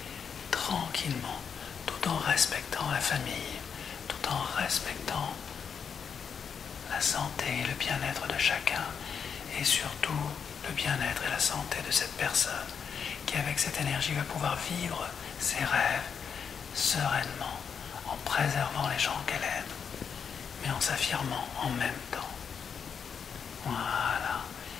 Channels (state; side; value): quieter; right; 6.8 dB